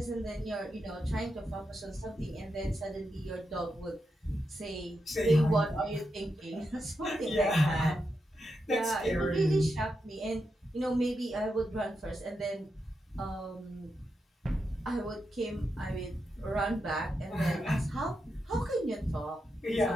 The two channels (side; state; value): both; normal; correlation 0.86